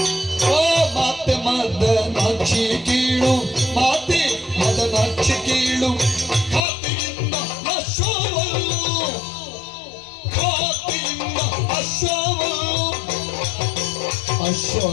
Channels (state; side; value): drops out; right; at 6.7 s